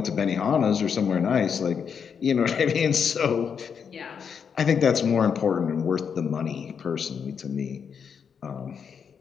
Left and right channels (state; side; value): quieter; right; 6.8 dB